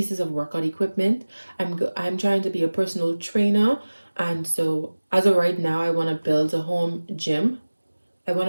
of workout equipment. I'm trying to be a personal trainer, and so as of right now, I want to build a home gym. I want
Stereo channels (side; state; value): both; inverted; correlation -1.00